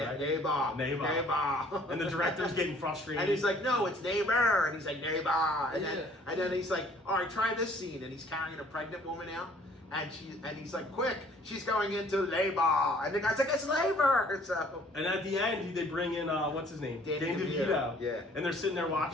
right? neighbor. Neighbor. And the director's getting frustrated. And he's like, no, it's neighbor. And he's like, neighbor. And Yeah. then he's like, all right, try this scene. And he's carrying a pregnant woman out. And he's like, quick, she's going into labor. And the guy's like, it's labor. So And at the end, they bring in what's his name, Danny Danny DeVito. DeVito. Yeah. And they're sitting there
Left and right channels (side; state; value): both; normal; correlation 0.57